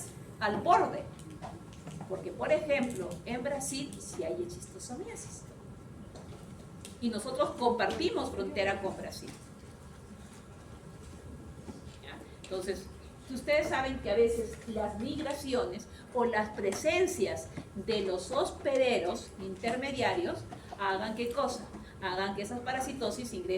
al borde. Porque, por ejemplo, en Brasil sí hay eschistosomiasis. Y nosotros compartimos frontera con Brasil. ¿Ya? Entonces, si ustedes saben que a veces las migraciones o las presencias de los hospederos intermediarios hagan ¿qué cosa? Hagan que esas parasitosis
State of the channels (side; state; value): both; identical; correlation 1.00